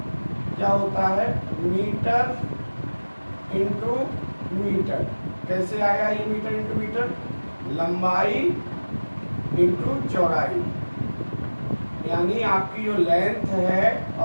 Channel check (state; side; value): inverted; both; correlation -1.00